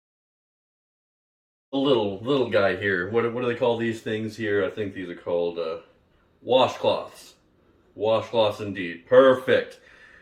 a little guy here. What do they call these things here? I think these are called washcloths. Washcloths indeed. Perfect.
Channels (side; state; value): both; identical; correlation 1.00